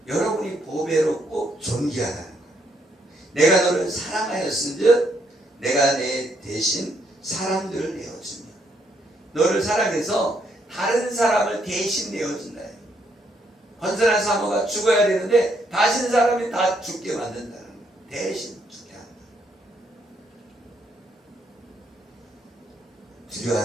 여러분이 보배롭고 존귀하다는 거예요. 내가 너를 사랑하였은즉 내가 내 대신 사람들을 내어주며, 너를 사랑해서 다른 사람을 대신 내어준다. 건선한 사모가 죽어야 되는데 다신 사람이 다 죽게 만든다는 거예요. 대신 죽게 한다.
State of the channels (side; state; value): both; normal; correlation 0.74